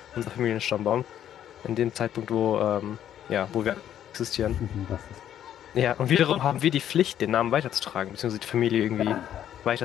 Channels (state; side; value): quieter; right; 10.6 dB